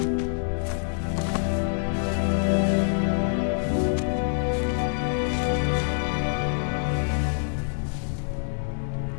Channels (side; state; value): right; silent; 59 dB below the other